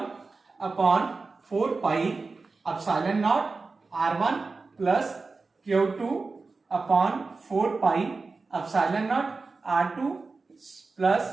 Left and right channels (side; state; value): left; quieter; 4.0 dB